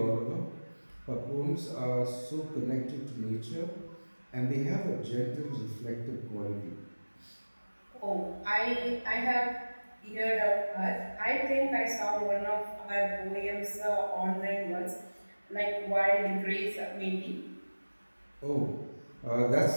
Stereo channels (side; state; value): both; inverted; correlation -1.00